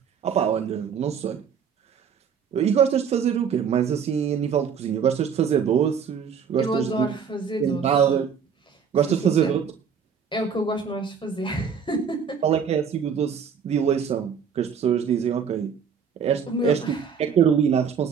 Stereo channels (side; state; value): left; quieter; 7.0 dB